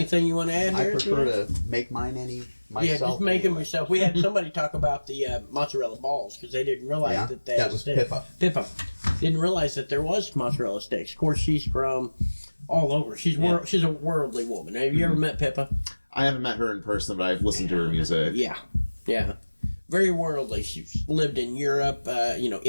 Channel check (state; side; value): inverted; both; correlation -1.00